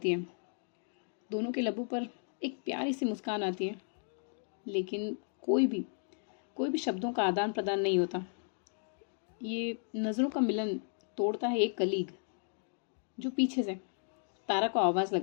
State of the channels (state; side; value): silent; right; 55 dB below the other